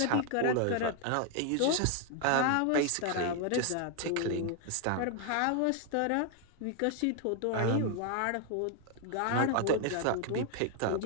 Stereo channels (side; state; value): both; different; correlation 0.00